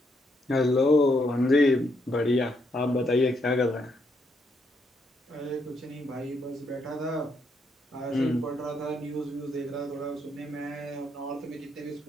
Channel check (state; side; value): normal; both; correlation 0.76